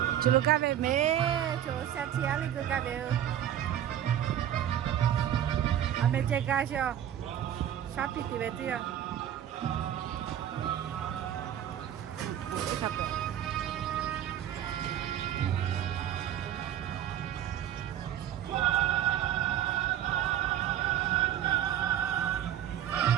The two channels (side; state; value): left; quieter; 10.8 dB